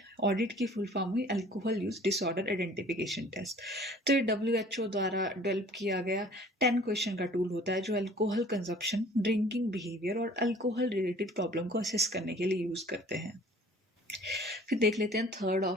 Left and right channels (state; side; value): normal; both; correlation 0.51